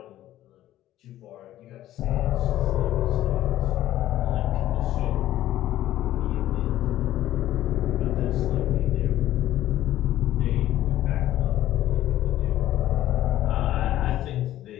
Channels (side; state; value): right; quieter; 13.6 dB